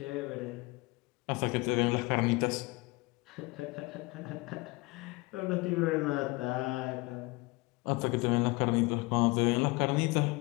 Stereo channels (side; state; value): right; quieter; 24.3 dB